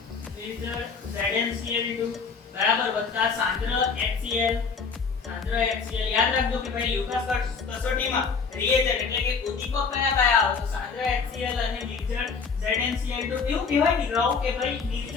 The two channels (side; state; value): right; quieter; 5.3 dB